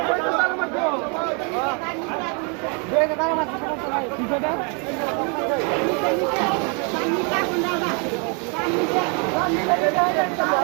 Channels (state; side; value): quieter; left; 35.9 dB